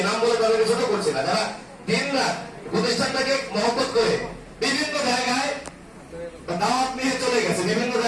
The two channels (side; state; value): both; identical; correlation 1.00